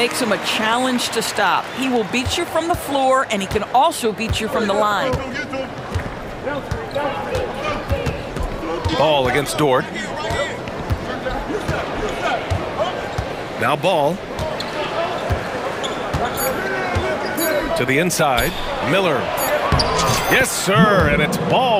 him a challenge to stop. He will beat you from the floor, and he can also beat you from the line. Ball against Dort. Now Ball. To the inside. Miller. Yes, sir. And it's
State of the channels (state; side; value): identical; both; correlation 1.00